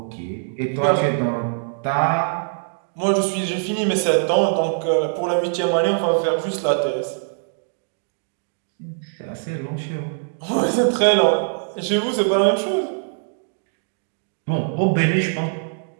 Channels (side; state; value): left; silent; digital silence